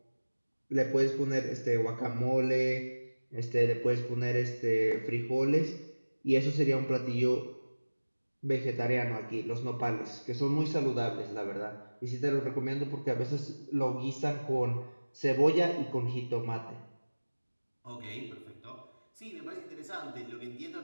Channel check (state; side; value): inverted; both; correlation -1.00